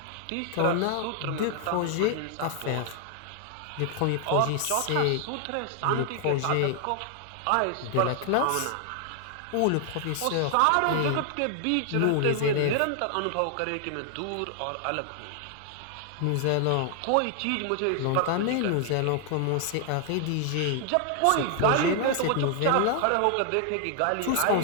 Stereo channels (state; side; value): different; both; correlation 0.00